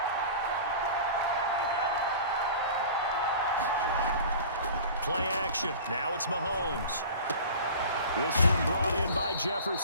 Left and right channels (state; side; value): inverted; both; correlation -0.39